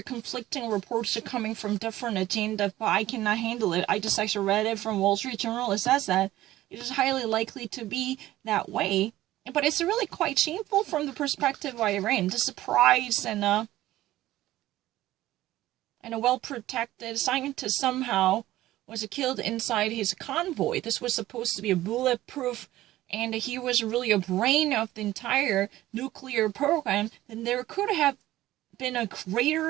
conflicting reports coming from different agendas, but I cannot handle it. I just actually read it from Wall Street Journal. It says that it is highly likely to be that way. But it's really quite shameful from the perspective of Iran. The surprise and a well-protected scientist somehow was killed inside his convoy. This was supposed to be a bulletproof, and he was really a brain of the entire nuclear program. Then there could have been a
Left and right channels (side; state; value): left; quieter; 15.4 dB